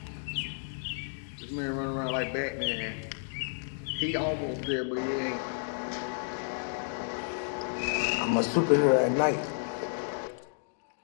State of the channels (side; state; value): right; silent; digital silence